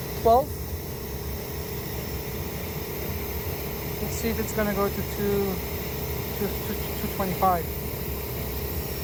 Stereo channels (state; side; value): identical; both; correlation 1.00